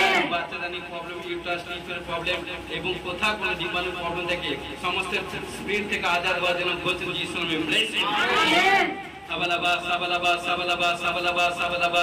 বাচ্চাদানি প্রবলেম ইউট্রাস লিভারের প্রবলেম এবং কোথাও কোনো জীবাণু প্রবলেম থেকে সমস্ত স্পিরিট থেকে আজাদ হওয়ার জন্য ঘোষণা যিশু নামে ব্লেস করি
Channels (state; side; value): identical; both; correlation 1.00